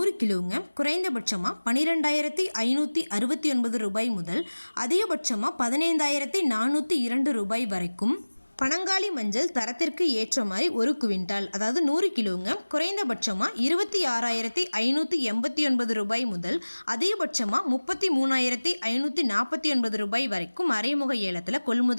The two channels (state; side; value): inverted; both; correlation -1.00